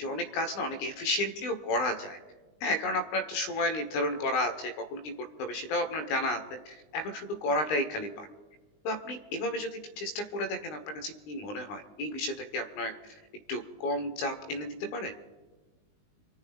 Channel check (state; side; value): late; right; 20 ms